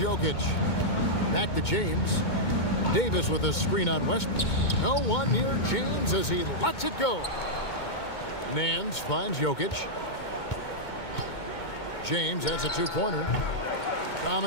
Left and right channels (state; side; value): late; right; 2.2 ms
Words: Back to James. Davis with a screen on Westbrook. No one near James as he lets it go. Nance finds Jokic. James has a two-pointer.